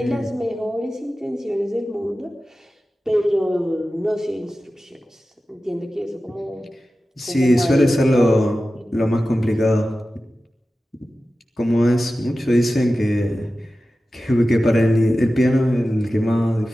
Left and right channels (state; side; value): normal; both; correlation 0.94